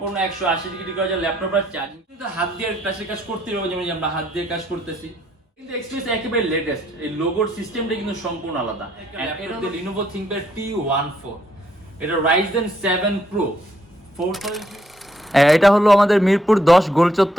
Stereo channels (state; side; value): normal; both; correlation 0.71